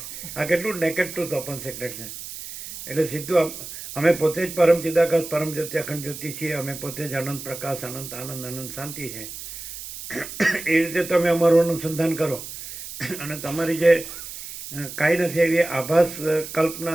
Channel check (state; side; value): noise; right; hiss, 11 dB below the sound